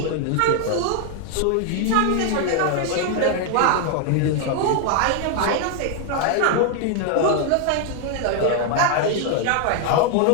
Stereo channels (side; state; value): both; different; correlation 0.01